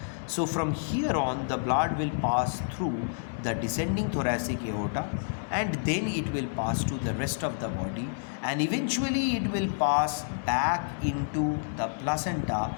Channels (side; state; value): right; silent; digital silence